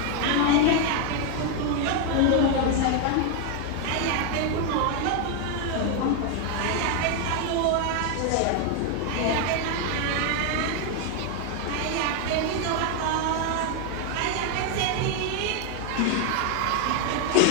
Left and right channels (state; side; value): different; both; correlation 0.01